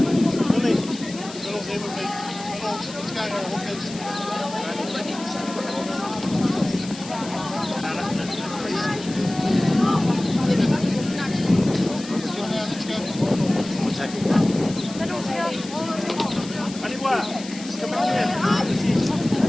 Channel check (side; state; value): left; noise; hiss, 15 dB below the sound